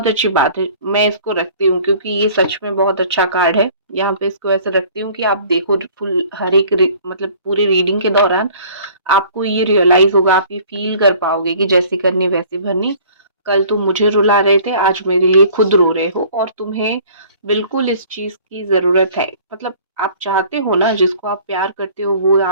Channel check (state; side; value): inverted; both; correlation -0.51